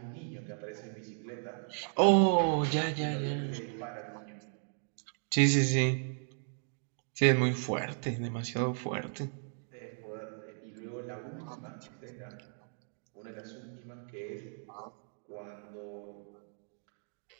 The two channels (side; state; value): left; silent; 54 dB below the other